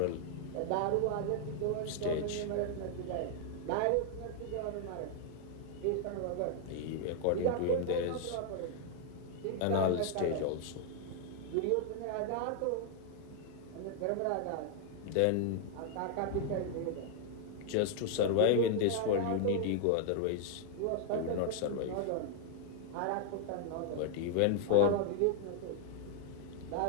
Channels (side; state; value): both; different; correlation 0.00